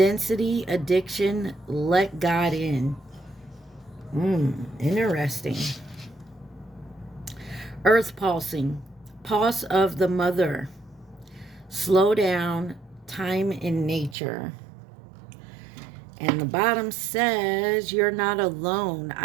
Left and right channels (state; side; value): drops out; left; at 14.2 s